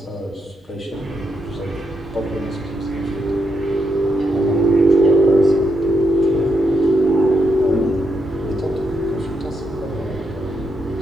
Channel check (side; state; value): both; normal; correlation 0.81